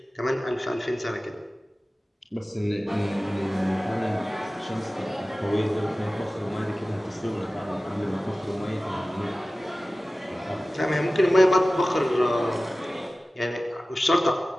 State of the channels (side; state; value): both; normal; correlation 0.97